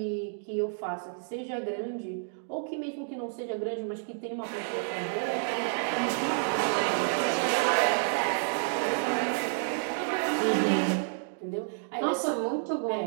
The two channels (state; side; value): silent; left; digital silence